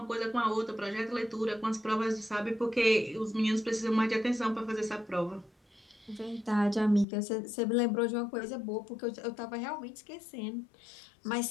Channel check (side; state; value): right; drops out; at 7.1 s